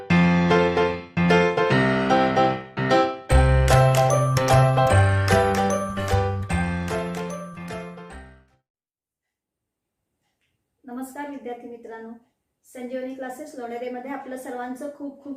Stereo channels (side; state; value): both; identical; correlation 1.00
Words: विद्यार्थी मित्रांनो, संजीवनी क्लासेस लोणेरेमध्ये आपलं सर्वांचं खूप